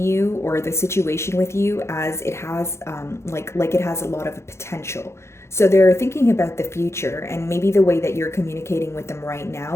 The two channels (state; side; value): late; right; 0.13 ms